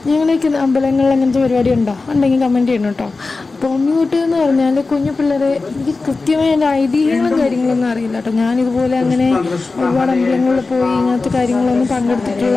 ഞങ്ങളേക്ക് അമ്പലങ്ങളിൽ അങ്ങനത്തെ പരിപാടി ഉണ്ടെങ്കിൽ കമൻറ്റ് ചെയ്യണം കേട്ടോ. അപ്പോൾ ഉണ്ണിയൂട്ട് എന്ന് പറഞ്ഞാൽ കുഞ്ഞു പിള്ളേരെ, എനിക്ക് കൃത്യമായ എൻ്റെ ഐതിഹ്യങ്ങളും കാര്യങ്ങളൊന്നും അറിയില്ല കേട്ടോ. ഞാനിതുപോലെ അങ്ങനെ ഒരുപാട് അമ്പലങ്ങളിൽ പോയി ഇങ്ങനത്തെ കാര്യങ്ങളൊന്നും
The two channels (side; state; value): right; quieter; 3.8 dB